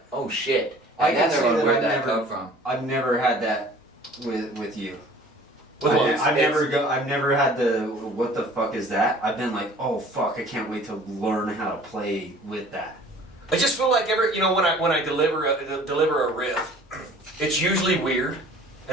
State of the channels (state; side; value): normal; both; correlation 0.49